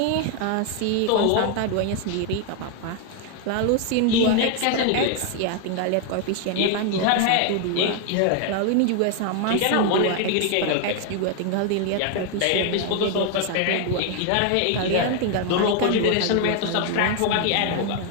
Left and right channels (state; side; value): different; both; correlation 0.00